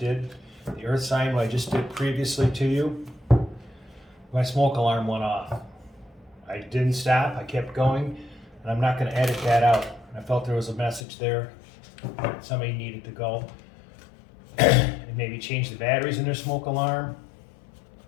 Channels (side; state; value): right; drops out; at 11.0 s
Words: the earth sign, what I just did previously to you, my smoke alarm went off. I didn't stop, I kept going, and I'm not going to edit that out. I felt there was a message there that somebody needed to go and maybe change the batteries in their smoke alarm